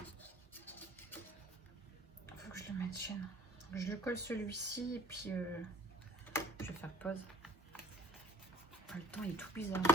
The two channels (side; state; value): both; normal; correlation 0.52